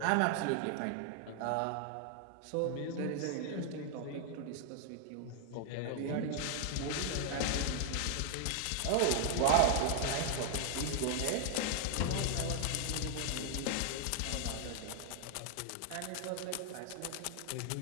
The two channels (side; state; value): both; different; correlation 0.00